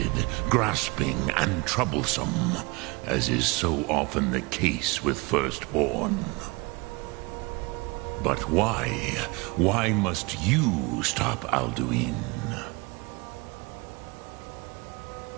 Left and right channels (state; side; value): quieter; left; 26.2 dB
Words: grasping, and troublesome, as is so often the case with firstborn. But why? Why must you stop Alduin?